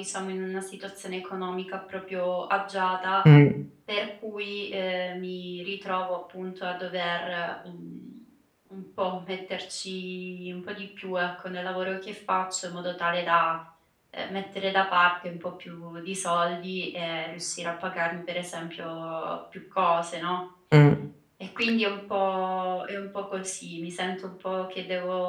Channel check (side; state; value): both; identical; correlation 1.00